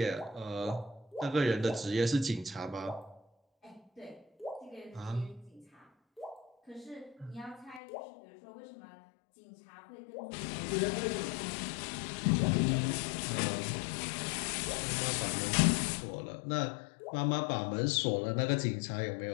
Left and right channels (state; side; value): drops out; right; at 7.8 s